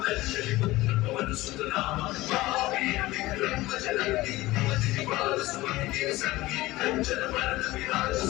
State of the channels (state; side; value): quieter; right; 18.4 dB